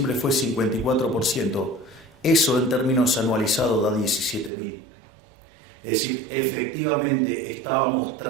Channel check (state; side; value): drops out; left; at 4.5 s